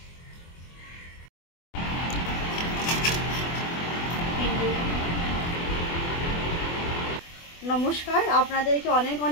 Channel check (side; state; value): right; late; 24 ms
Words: নমস্কার, আপনাদেরকে অনেক